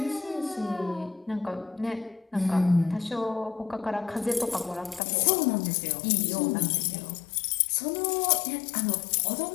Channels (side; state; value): right; drops out; at 5.0 s